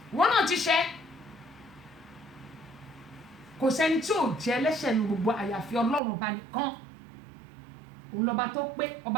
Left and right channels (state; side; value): drops out; left; at 6.0 s